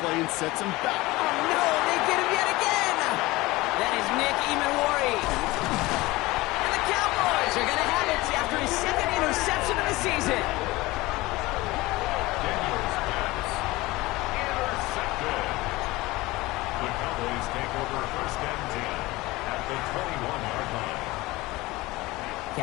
play and sets him back. Oh, no, they get him yet again. That is Nick Emanwari. And the Cowboys are going to have it after his 2nd interception of the season. Daniels pass. Intercepted. The Cowboys take over 1st and 10 at the 21-yard line.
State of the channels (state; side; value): quieter; right; 20.4 dB